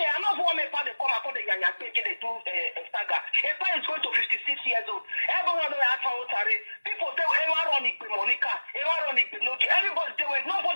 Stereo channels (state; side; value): inverted; both; correlation -1.00